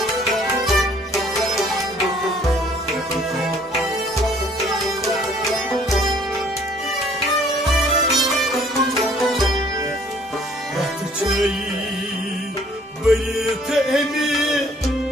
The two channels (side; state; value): both; normal; correlation 0.59